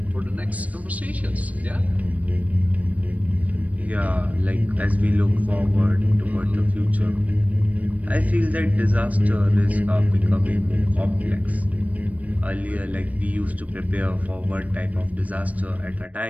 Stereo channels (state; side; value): late; left; 0.070 ms